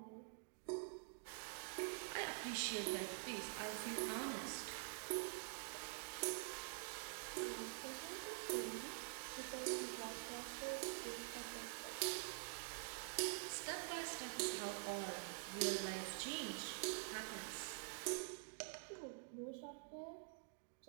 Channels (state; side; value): silent; left; digital silence